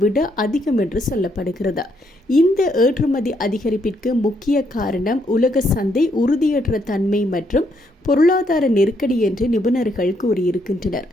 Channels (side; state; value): both; normal; correlation 0.73